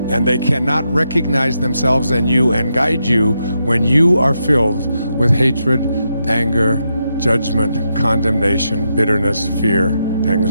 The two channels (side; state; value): both; inverted; correlation -0.83